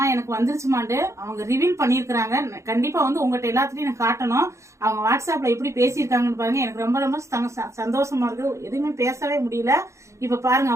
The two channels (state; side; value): late; left; 0.14 ms